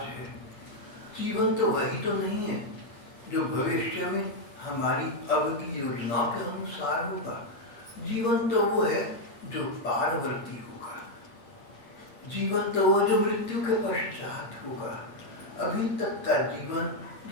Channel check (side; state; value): right; late; 8.6 ms